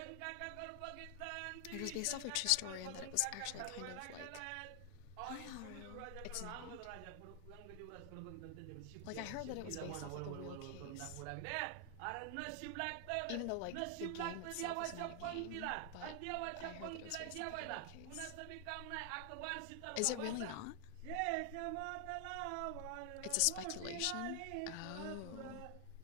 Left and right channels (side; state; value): both; different; correlation 0.00